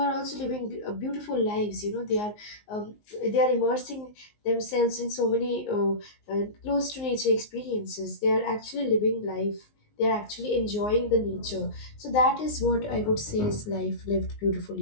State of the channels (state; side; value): late; right; 19 ms